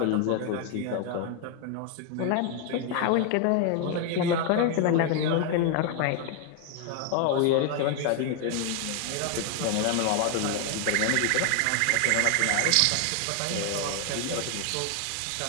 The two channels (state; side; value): different; both; correlation 0.00